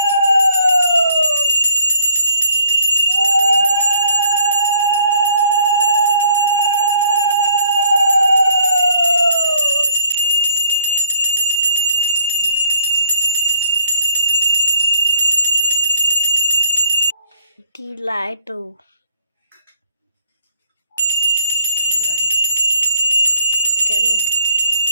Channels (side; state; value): both; inverted; correlation -0.64